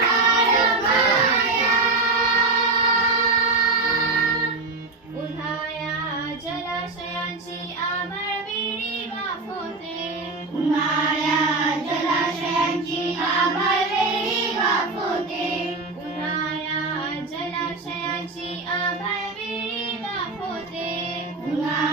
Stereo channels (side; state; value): left; quieter; 3.5 dB